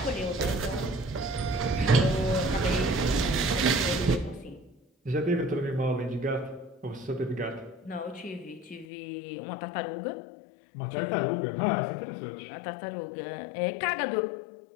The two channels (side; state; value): right; drops out; at 8.8 s